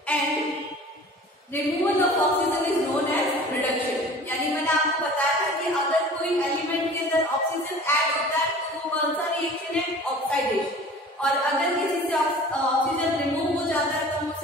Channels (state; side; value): normal; both; correlation 0.43